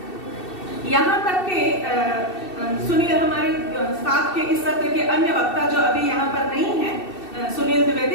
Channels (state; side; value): late; right; 2.7 ms